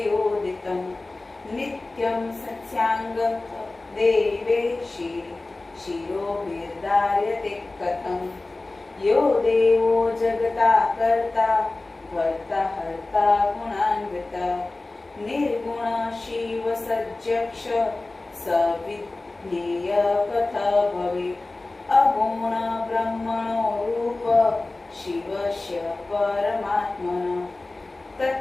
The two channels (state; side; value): quieter; right; 3.1 dB